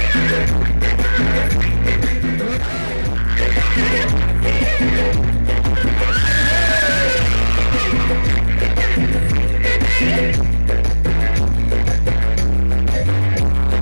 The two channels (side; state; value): both; inverted; correlation -1.00